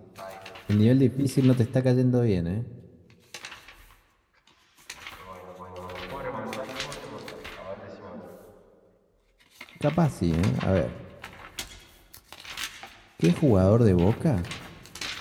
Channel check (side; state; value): both; identical; correlation 1.00